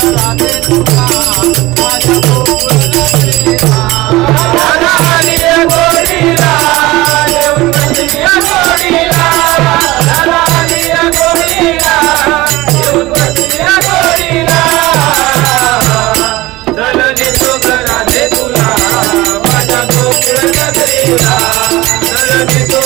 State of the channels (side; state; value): left; quieter; 19.3 dB